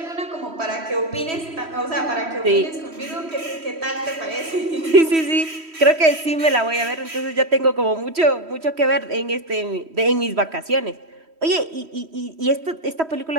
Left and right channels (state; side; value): late; left; 3.1 ms